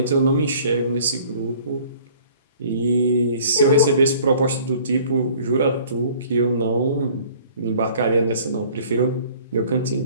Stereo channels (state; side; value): inverted; both; correlation -0.53